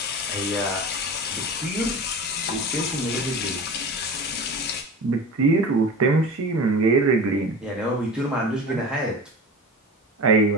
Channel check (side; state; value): both; normal; correlation 0.33